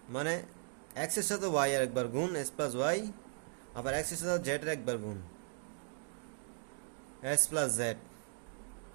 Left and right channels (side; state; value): left; silent; 53 dB below the other